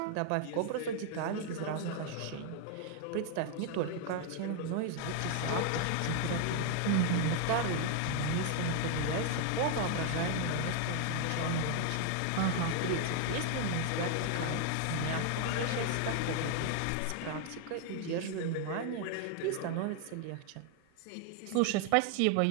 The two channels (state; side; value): different; both; correlation 0.00